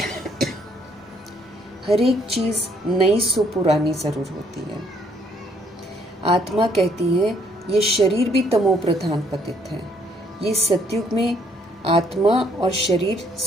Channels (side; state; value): both; normal; correlation 0.66